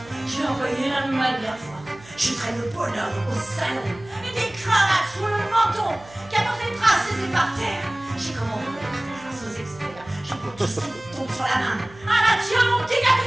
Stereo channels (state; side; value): noise; right; hum, 22 dB below the sound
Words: J'ai envoyé la manière forte. Je traîne le bonhomme au salon, et des cravates sous le menton, qui apportent des traces et c'est par terre. J'ai commandé grâce aux experts. Je peux tout ce qui tombe sur la main. Ah là, tiens, mon petit gars,